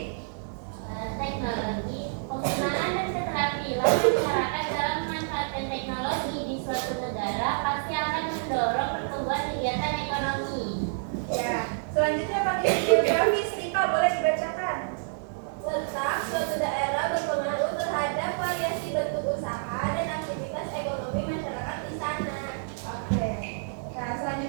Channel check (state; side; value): silent; left; 59 dB below the other